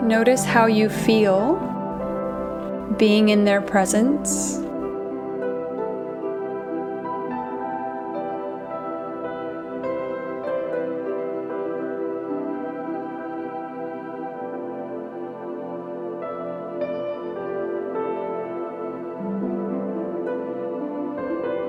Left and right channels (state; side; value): identical; both; correlation 1.00